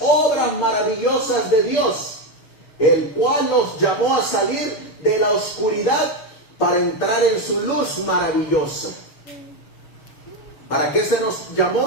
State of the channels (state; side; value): late; right; 6.8 ms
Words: obras maravillosas de Dios, el cual nos llamó a salir de la oscuridad para entrar en su luz maravillosa. ¿Para qué se nos